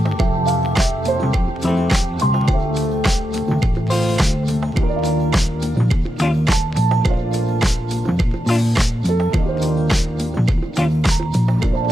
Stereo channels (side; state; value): both; normal; correlation 0.87